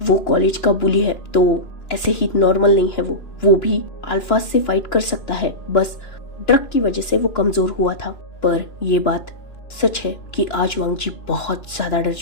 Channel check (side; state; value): right; late; 2.9 ms